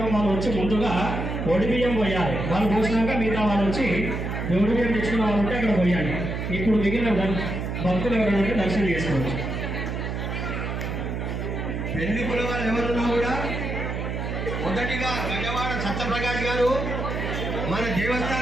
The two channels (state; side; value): noise; right; hum, 3 dB below the sound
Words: వాళ్ళు వచ్చి ముందుగా ఒడిబియ్యం పోయాలి. వాళ్ళు పోసినాక మిగతా వాళ్ళు వచ్చి ఒడిబియ్యం తెచ్చుకున్న వాళ్ళు ఉంటే అక్కడ పోయాలి. ఇప్పుడు మిగిలిన భక్తులు ఎవరైనా దర్శనం చేసుకోవచ్చు. పెళ్లికుల వాళ్ళు ఎవరున్నా కూడా మొదటిగా గజవాడ సత్యప్రకాష్ గారు మన